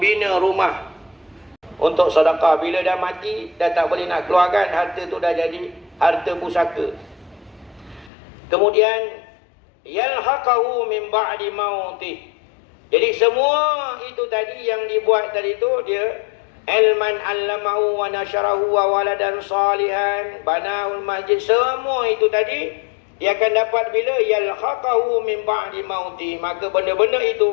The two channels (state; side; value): drops out; right; at 8.1 s